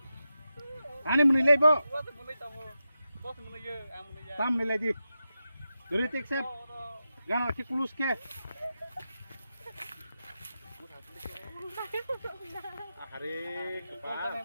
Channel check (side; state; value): both; inverted; correlation -0.90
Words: Ani muni lagi bo. Tam ni lagi. Dari tik sep. Jangan lagi kulus ke. Hari kepas.